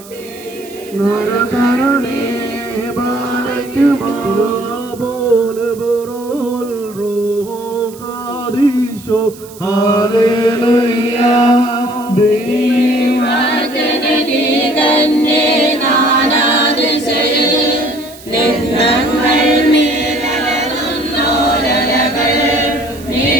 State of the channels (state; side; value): noise; right; hiss, 20 dB below the sound